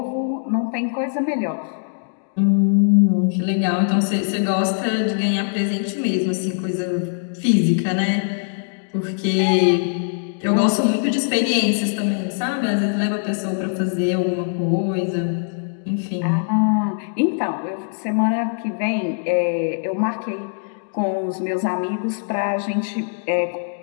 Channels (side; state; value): right; silent; digital silence